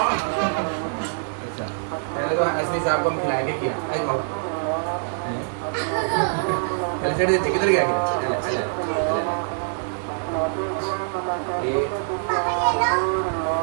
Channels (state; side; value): silent; left; digital silence